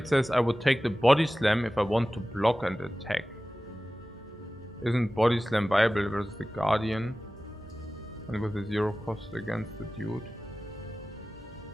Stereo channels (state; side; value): normal; both; correlation 0.96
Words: says, I would take the Body Slam if I want to block and attack. Isn't Body Slam viable versus the Guardian? And with a 0 cost against the dude.